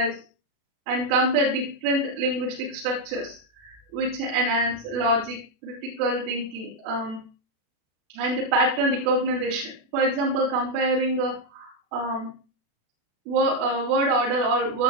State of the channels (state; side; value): late; left; 36 ms